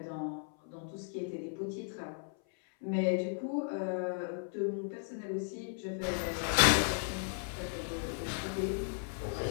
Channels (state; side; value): silent; right; 54 dB below the other